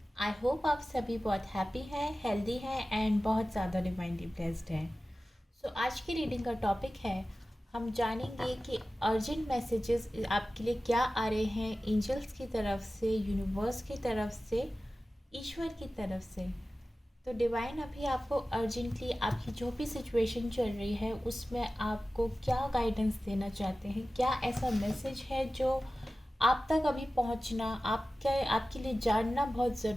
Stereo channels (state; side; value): normal; both; correlation 0.96